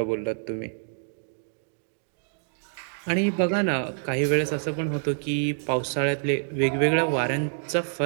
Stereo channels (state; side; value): silent; left; digital silence